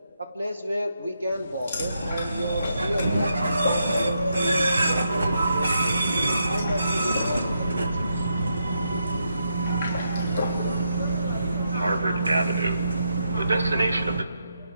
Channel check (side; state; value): both; inverted; correlation -0.81